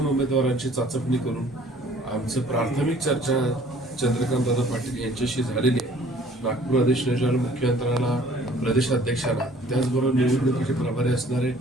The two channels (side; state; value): both; normal; correlation 0.55